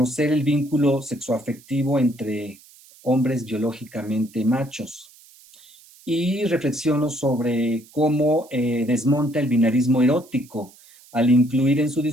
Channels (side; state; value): right; noise; hiss, 25 dB below the sound